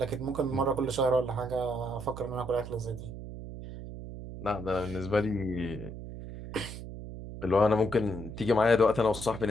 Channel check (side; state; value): right; noise; hum, 10 dB below the sound